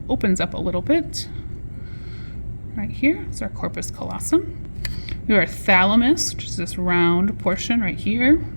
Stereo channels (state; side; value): inverted; both; correlation -1.00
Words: opens up a little bit. Right here is our corpus callosum. We have our thalamus, which is this round portion right here.